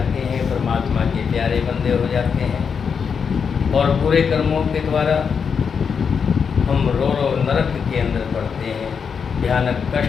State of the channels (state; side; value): quieter; right; 6.3 dB